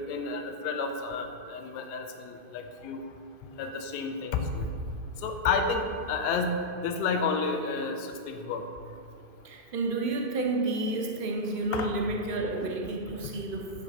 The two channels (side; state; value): left; late; 2.5 ms